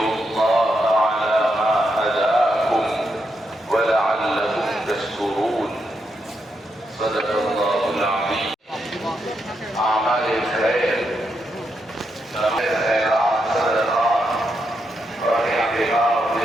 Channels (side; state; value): both; normal; correlation 0.82